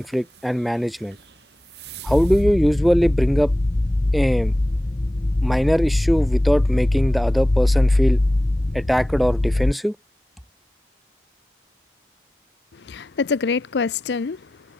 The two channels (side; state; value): both; normal; correlation 0.95